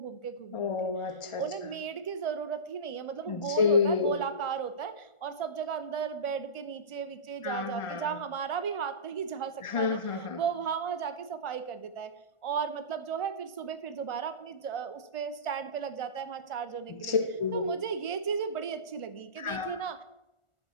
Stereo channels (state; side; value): late; right; 1.4 ms